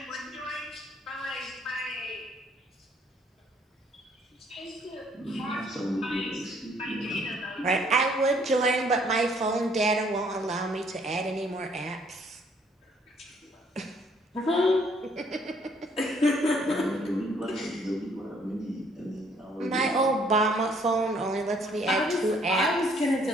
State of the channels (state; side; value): normal; both; correlation 0.63